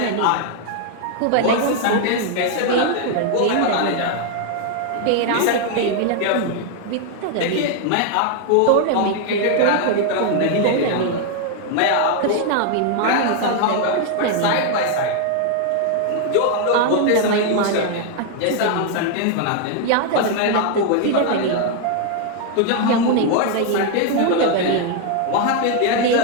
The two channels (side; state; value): both; different; correlation 0.00